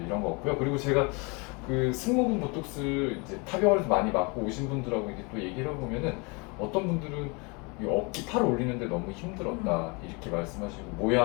이런 거 없고요. 그리고 제가 그 승모근 보톡스 이제 타병원에서 많이 맞고 오신 분들하고 이제 또 얘기를 해보면은, 어떤 분들은 이 어깨 팔 올리는데 너무 힘들었다 이렇게 말씀하시고,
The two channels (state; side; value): quieter; right; 30.0 dB